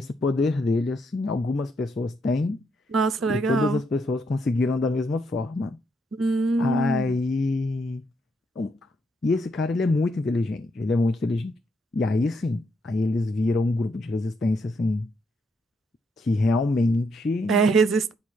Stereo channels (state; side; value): normal; both; correlation 0.76